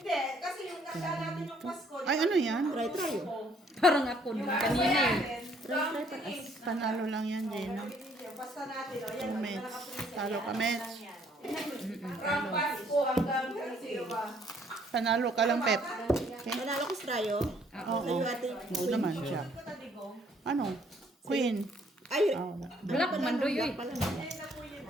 kasi yung nakita natin yung Pasko. ay ano yan? Try. Parang ako nung kanina eh. Panalo lang yan, Gina. Basta natin, o yan. Mets. Talo ka, Mets. From Pasko hanggang sino ba? Panalo ka lang, Pep. Okay? Manalo ko sa Rayo. Oo. Oo naman siya. Ito taligo. Ano? Queen. Ay, Oh, Black mandoy eh. Ayun na po yun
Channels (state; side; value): normal; both; correlation 0.64